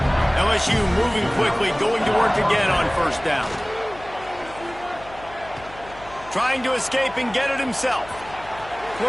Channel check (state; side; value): noise; left; hum, 19 dB below the sound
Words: LSU moving quickly, going to work again on first down. Trying to escape and get it himself.